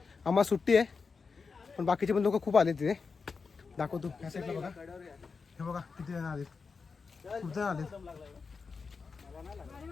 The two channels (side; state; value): right; quieter; 4.9 dB